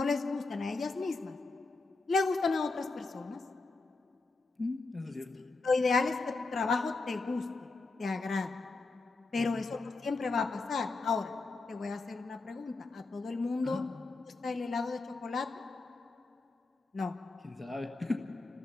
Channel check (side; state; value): right; quieter; 3.7 dB